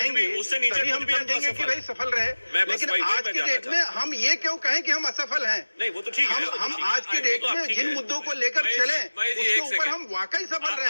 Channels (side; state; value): both; inverted; correlation -1.00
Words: तभी हम समझेंगे कि भाई सफल रहे। लेकिन आज के डेट में हम ये क्यों कहें कि हम असफल हैं? नहीं, वो तो ठीक है। हम आज के डेट में जिन मुद्दों को लेकर चले उसके ऊपर हम वाकई सफल रहे